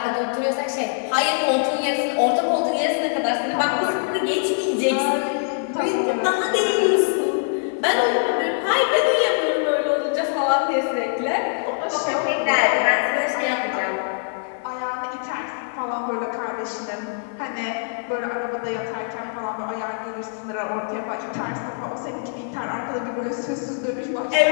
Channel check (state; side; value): silent; right; 63 dB below the other